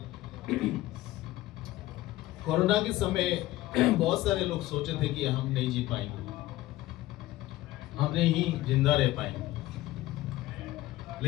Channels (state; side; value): quieter; right; 16.5 dB